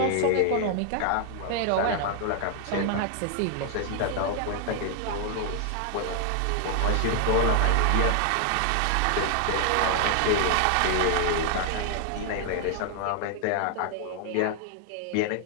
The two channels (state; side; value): different; both; correlation 0.00